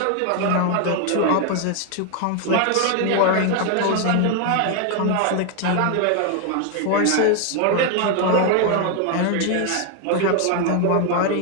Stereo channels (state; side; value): different; both; correlation 0.00